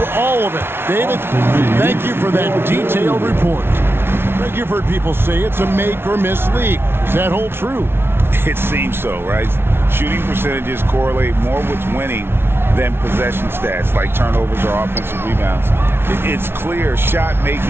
all of it. David, thank you for that detailed report. You've heard people say it's a make or miss league. Does that hold true? It seems so, right? Shooting percentages correlate more with winning than possession stats like turnovers or offensive rebounds. It's clear shot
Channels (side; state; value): left; late; 0.11 ms